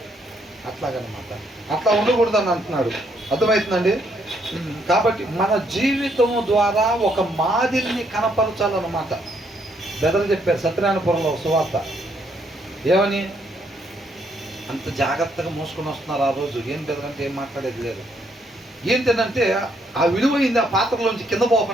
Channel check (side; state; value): both; normal; correlation 0.72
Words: అట్లాగనమాట. అట్లా ఉండకూడదు అని అంటున్నాడు. అర్థమవుతుందండి. కాబట్టి మన జీవితం ద్వారా ఒక మాదిరిని కనపరచాలన్నమాట. బెదరు చెప్పారు సత్యనారాయణపురంలో సువార్త. ఏమని? అంత జాగ్రత్తగా మోసుకొని వస్తున్నారు ఆ రోజు. ఏం బెదరంటే ఏం మాట్లాడేది లేదు. ఏంటంటే ఆ విలువైంది ఆ పాత్రలోంచి కింద